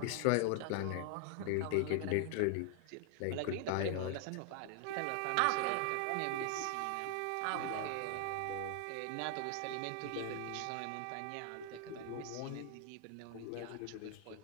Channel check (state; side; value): different; both; correlation 0.00